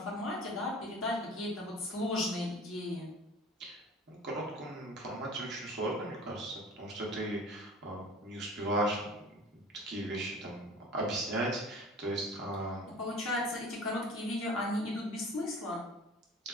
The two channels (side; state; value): both; normal; correlation 0.42